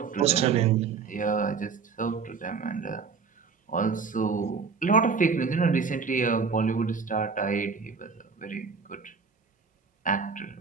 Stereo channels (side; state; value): left; quieter; 5.4 dB